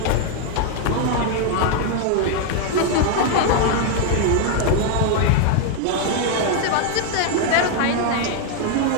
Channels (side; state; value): both; different; correlation 0.01